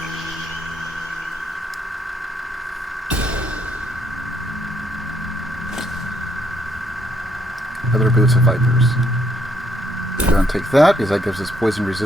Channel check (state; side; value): normal; both; correlation 0.72